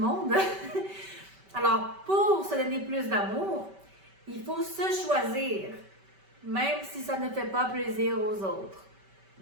Alors, pour se donner plus d'amour, il faut se choisir, même si ça ne fait pas plaisir aux autres.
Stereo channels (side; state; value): left; late; 5.2 ms